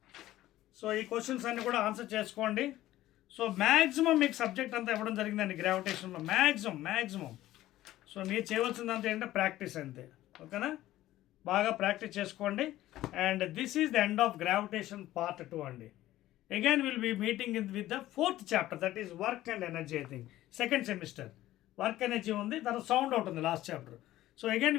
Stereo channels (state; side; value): quieter; right; 15.0 dB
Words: సో ఈ క్వశ్చన్స్ అన్నీ కూడా ఆన్సర్ చేసుకోండి. సో మ్యాక్సిమం మీకు సబ్జెక్ట్ అంతా ఇవ్వడం జరిగిందండి గ్రావిటేషన్లో, మ్యాక్సిమం. సో మీరు చేయవలసిందంతా ఏంటంటే ప్రాక్టీస్ అంతే. ఓకేనా? బాగా ప్రాక్టీస్ చేసుకోండి. And this is the end of gravitation part 2 అండి. Again will be meeting with the 4th chapter, that is work and energy. I think 2nd semester work energy ఉంది, తర్వాత sound out ఉంది last chapter. So again